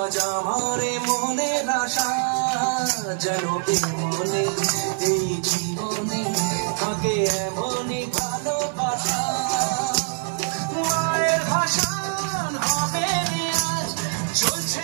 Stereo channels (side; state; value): left; silent; digital silence